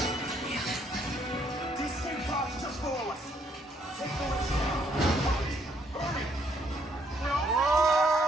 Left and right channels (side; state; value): both; normal; correlation 0.70